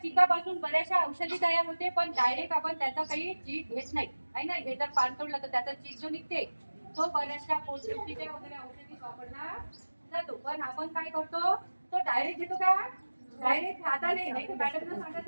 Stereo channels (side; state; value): both; inverted; correlation -1.00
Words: चिकापासून बऱ्याचशा औषधी तयार होते, पण डायरेक्ट आपण त्याचा काही चीक घेत नाही आहे ना. हे जर पान तोडलं तर त्याचा चीक जो निघते तो बऱ्याचशा पोटदुखीच्या वगैरे औषधी वापरला जातो. पण आपण काय करतो, तो डायरेक्ट घेतो का? डायरेक्ट हाताने नाही. मॅडमला